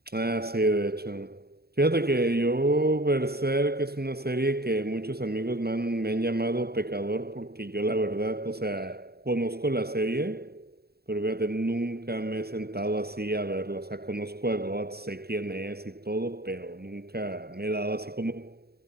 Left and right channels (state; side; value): late; left; 0.46 ms